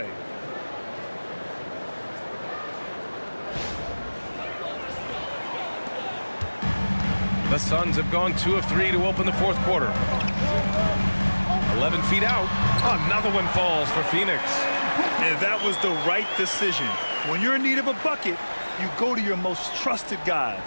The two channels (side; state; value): both; inverted; correlation -1.00